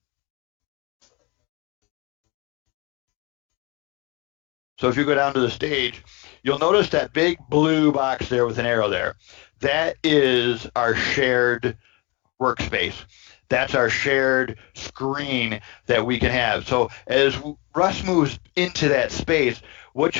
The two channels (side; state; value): right; quieter; 26.7 dB